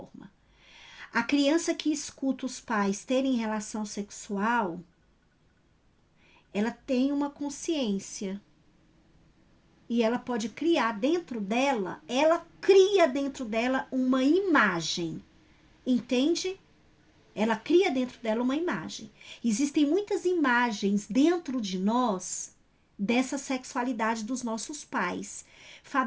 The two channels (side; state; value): both; identical; correlation 1.00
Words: A criança que escuta os pais terem relação sexual, ela tem uma consciência. E ela pode criar dentro dela, ela cria dentro dela uma imagem. Entende? Ela cria dentro dela uma imagem. Existem muitas imagens dentro de nós dessa sexualidade dos nossos pais.